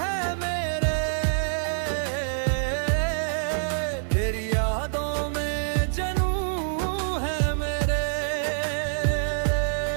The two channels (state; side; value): silent; left; 61 dB below the other